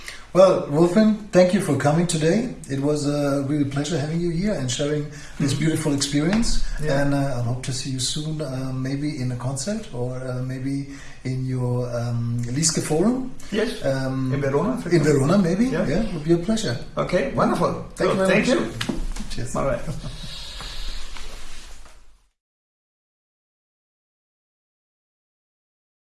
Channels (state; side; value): identical; both; correlation 1.00